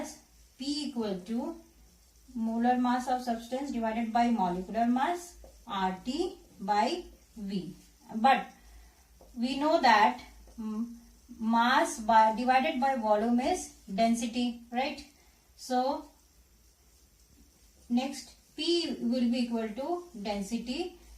P equal to molar mass of substance divided by molecular mass, RT by V. But we know that mass divided by volume is density, right? So next P will be equal to density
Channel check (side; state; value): both; identical; correlation 1.00